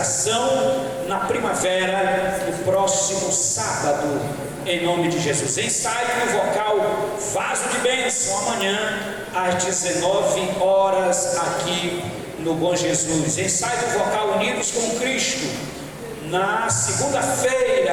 na primavera, no próximo sábado, em nome de Jesus. Ensaio no vocal Vaso de Bênção, amanhã às 19 horas aqui no Bom Jesus. Ensaio no vocal Unidos com Cristo, na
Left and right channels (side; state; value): both; identical; correlation 1.00